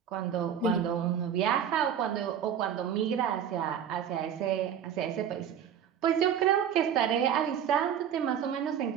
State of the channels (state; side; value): quieter; left; 8.8 dB